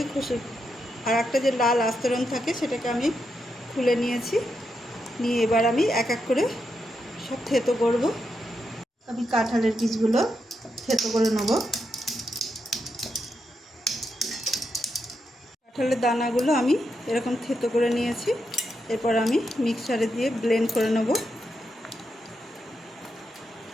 আর একটা যে লাল আস্তরণ থাকে সেটাকে আমি খুলে নিয়েছি। নিয়ে এবার আমি এক এক করে সব থেতো করব। আমি কাঁঠালের বীজগুলো থেতো করে নেব। কাঁঠালের দানাগুলো আমি এরকম থেতো করে নিয়েছি। এরপর আমি মিক্সারে দিয়ে ব্লেন্ড করে নেব।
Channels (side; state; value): both; normal; correlation 0.83